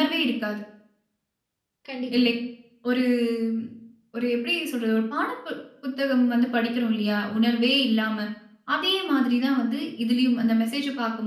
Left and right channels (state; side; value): identical; both; correlation 1.00